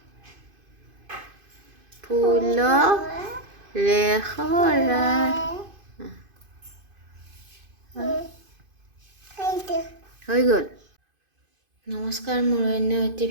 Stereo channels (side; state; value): left; late; 2.5 ms